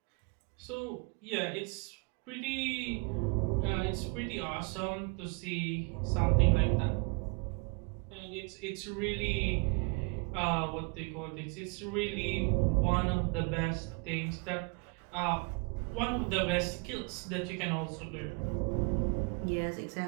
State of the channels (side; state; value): left; quieter; 33.4 dB